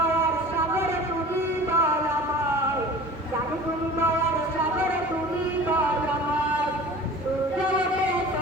সাগরে তুমি দয়াময় জানি তুমি দয়ার সাগরে তুমি দয়াময় সূর্য ওঠে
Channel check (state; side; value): normal; both; correlation 0.40